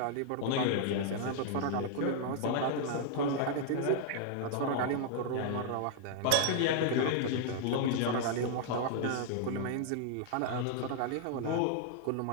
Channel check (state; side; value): different; both; correlation -0.01